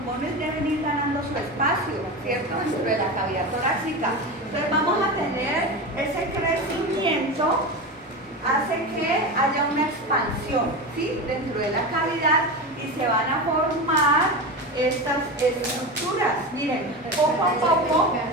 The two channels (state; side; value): normal; both; correlation 0.23